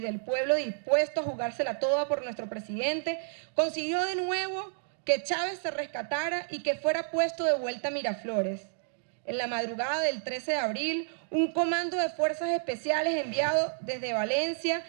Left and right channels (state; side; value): silent; left; digital silence